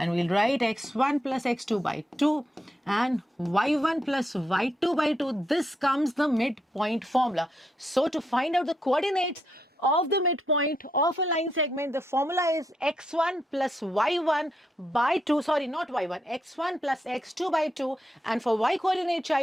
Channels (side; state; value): both; normal; correlation 0.80